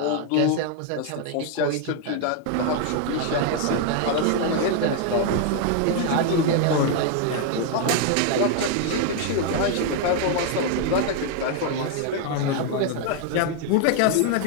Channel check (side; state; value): both; different; correlation 0.00